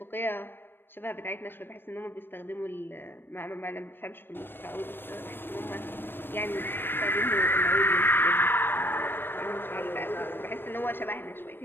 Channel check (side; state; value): right; late; 0.098 ms